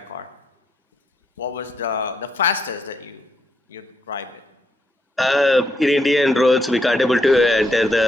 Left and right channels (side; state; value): both; normal; correlation 0.77